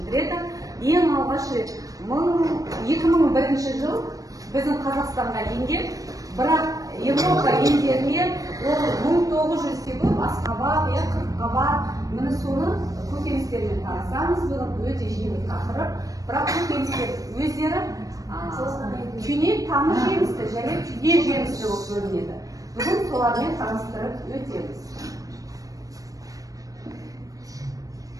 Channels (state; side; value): late; left; 0.17 ms